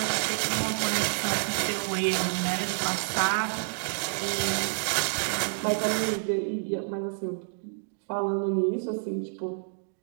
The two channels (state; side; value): silent; left; digital silence